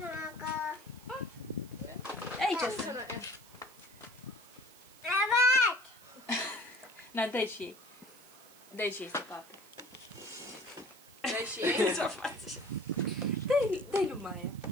Aici sunt. Na, dai și ei. Dai și ei să papă. Dai și ei. Ce-o faci? Dai lui Maia.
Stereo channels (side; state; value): right; noise; hiss, 22 dB below the sound